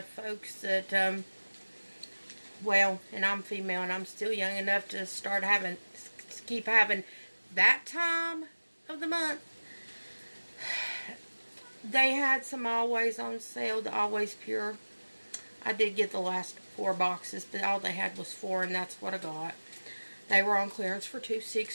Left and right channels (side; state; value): both; inverted; correlation -1.00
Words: folks, that, well, and I'm female and I'm still young enough to keep having that time of the month. They had some Always on sale, the Always Pure. I did get the last 4 boxes, but all they had was 4, and that's what I got. They were on clearance for